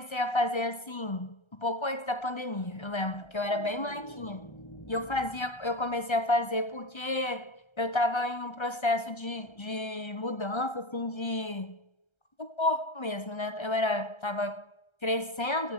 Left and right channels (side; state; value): right; late; 1.3 ms